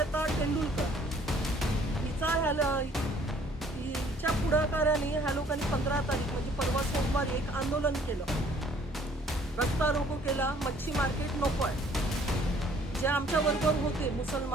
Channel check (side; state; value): both; normal; correlation 0.58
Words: टेंडुलकर हिच्या पुढाकाराने ह्या लोकांनी 15 तारीख म्हणजे परवा सोमवारी एक आंदोलन केलं, रस्ता रोको केला, मच्छी मार्केट नको आहे. जे आमच्या बरोबर होते